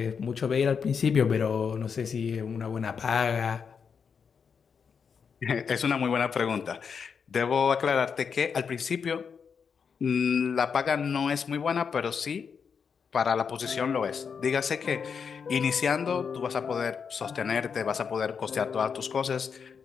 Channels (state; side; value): quieter; right; 6.3 dB